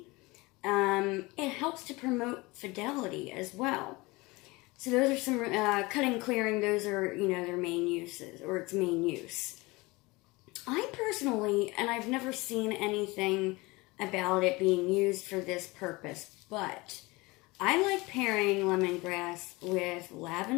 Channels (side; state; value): right; quieter; 23.1 dB